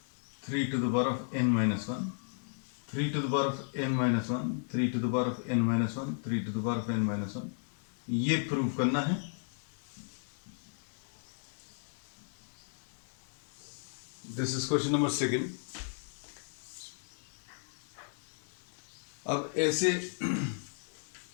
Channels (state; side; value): silent; right; digital silence